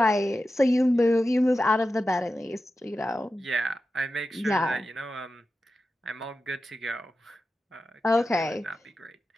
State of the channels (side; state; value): both; normal; correlation 0.92